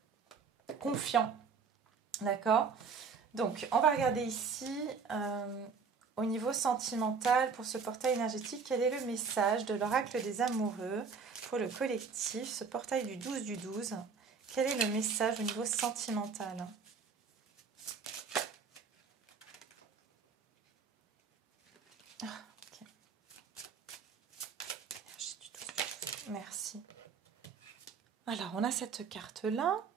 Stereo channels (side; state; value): left; quieter; 5.5 dB